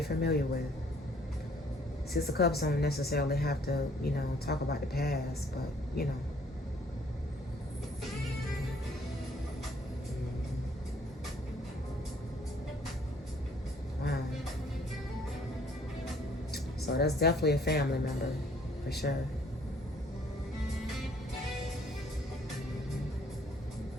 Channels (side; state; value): both; normal; correlation 0.61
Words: familiar with. Six of Cups don't necessarily have to, you know, talk about the past, but, you know. Wow. So that's definitely a family member, for sure.